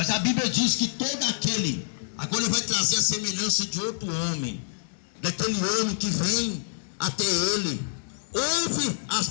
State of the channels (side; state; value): right; silent; digital silence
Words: a Bíblia diz que todo aquele, agora ele vai trazer a semelhança de outro homem, daquele homem que vem até ele, ouve as